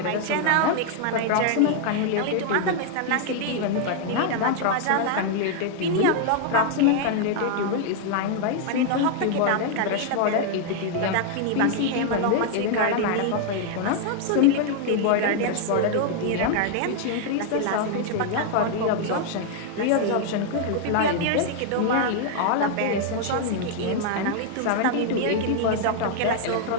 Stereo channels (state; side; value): different; both; correlation 0.00